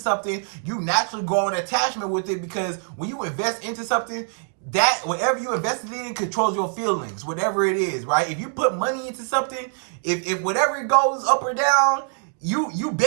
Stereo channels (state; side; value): silent; left; 57 dB below the other